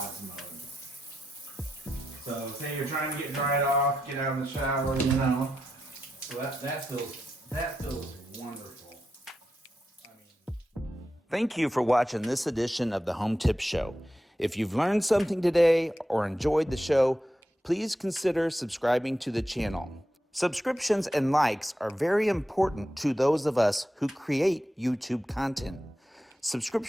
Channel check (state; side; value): normal; both; correlation 0.87